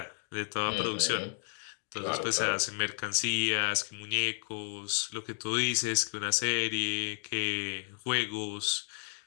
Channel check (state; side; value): silent; right; 56 dB below the other